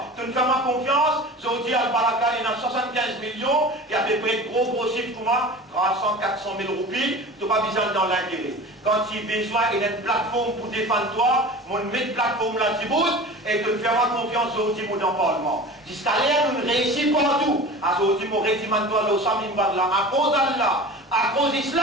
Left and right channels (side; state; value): both; normal; correlation 0.36